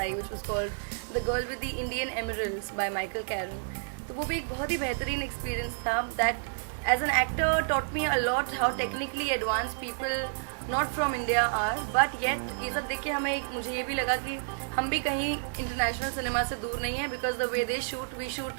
which was called the girl with the Indian emeralds by Michael Karen. तो वो भी एक बहुत ही बेहतरीन एक्सपीरियंस था. That as an actor taught me a lot how technically advance people not from India are, but yet ये सब देख के मुझे ये भी लगा कि हम भी कहीं इंटरनेशनल सिनेमा से दूर नहीं है, because the way they shoot we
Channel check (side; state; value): left; silent; digital silence